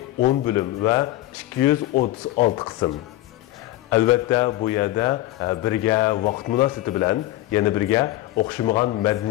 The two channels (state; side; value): quieter; right; 16.0 dB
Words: 10 bo'lim va 236 qism. Albatta bu yerda birga vaqt munosabati bilan yana birga o'xshamagan